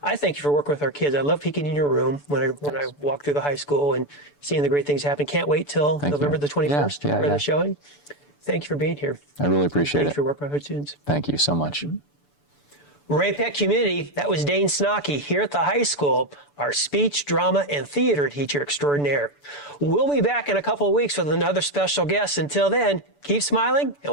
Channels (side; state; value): right; late; 6.9 ms